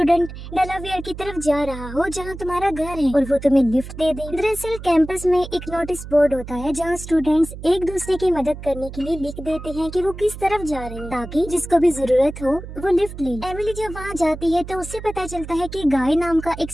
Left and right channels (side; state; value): right; noise; hum, 12 dB below the sound